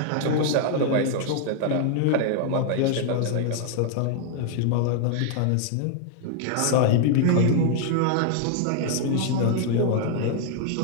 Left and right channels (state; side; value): different; both; correlation 0.00